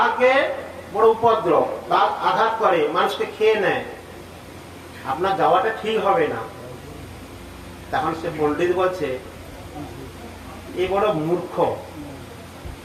বড় উপদ্রব, বাঘ আঘাত করে, মানুষকে খেয়ে নেয়, আপনার যাওয়াটা ঠিক হবে না। তখন সে পণ্ডিত বলছে এ বড় মূর্খ,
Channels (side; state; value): both; identical; correlation 1.00